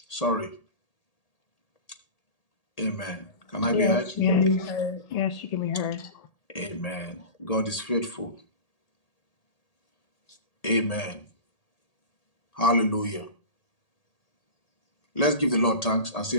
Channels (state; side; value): late; right; 1.8 ms